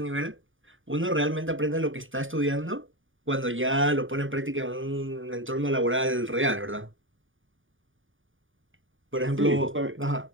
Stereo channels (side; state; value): left; late; 0.57 ms